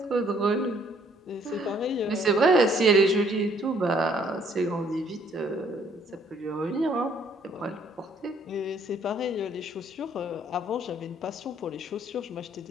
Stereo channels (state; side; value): normal; both; correlation 0.63